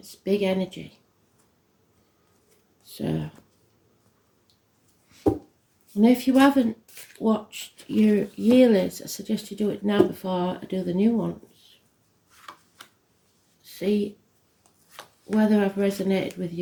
big energy. So, and if you haven't watched your yearlies, I suggest you do it now before I do the new ones. See whether I've resonated with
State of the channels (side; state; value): both; identical; correlation 1.00